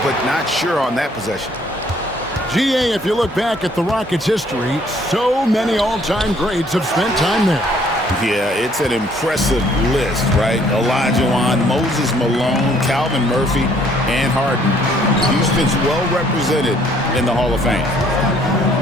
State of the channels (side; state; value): both; normal; correlation 0.62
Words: but not sure on that possession. GA, if you look back at the Rockets' history, so many all-time greats have spent time there. Yeah, it's an impressive list, right? Olajuwon, Moses Malone, Calvin Murphy, and Harden. Houston's well represented in the Hall of Fame.